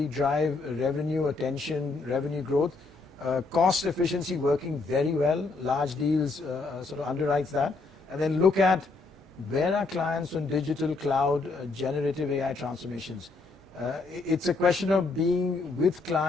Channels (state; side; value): quieter; right; 3.8 dB